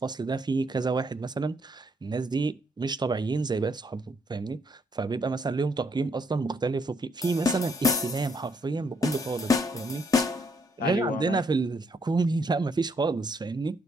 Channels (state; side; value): normal; both; correlation 0.72